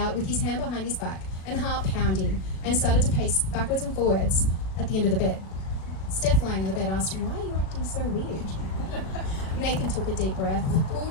with his hand behind his back and heart pounding, and started to pace backwards and forwards at the end of the bed. Steph, lying on the bed, asked him, "Why are you acting so weird?" Nathan took a deep breath, pulled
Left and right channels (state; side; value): late; right; 37 ms